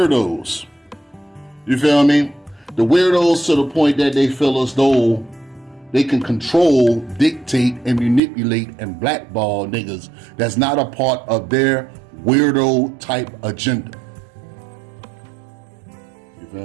You feel me? The weirdos to the point that they feel as though they can control, dictate, and manipulate and blackball niggas that's not a part of their weirdo type agenda. You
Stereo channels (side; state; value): left; drops out; at 8.2 s